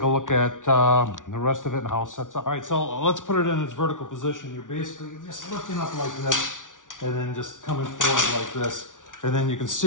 a look at the rest of it and how it sets up. All right, so let's put it in its vertical position. You're basically just lifting up like this and then just coming forward like this. And then you can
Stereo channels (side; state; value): right; late; 0.88 ms